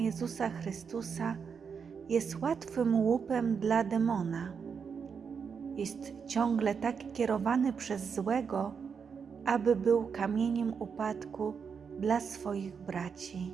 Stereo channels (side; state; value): left; quieter; 6.3 dB